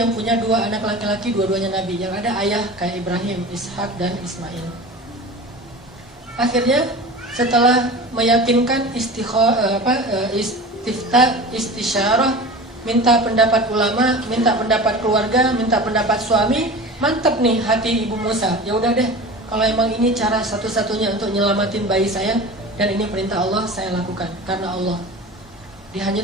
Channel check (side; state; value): both; normal; correlation 0.35